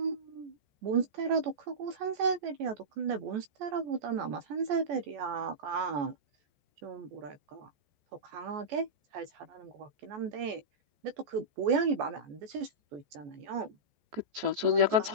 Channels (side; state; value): left; late; 14 ms